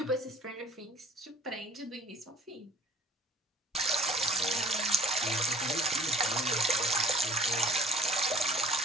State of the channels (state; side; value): normal; both; correlation 0.53